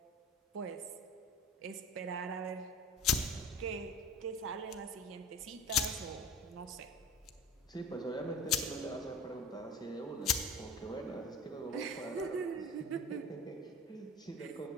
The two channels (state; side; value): normal; both; correlation 0.38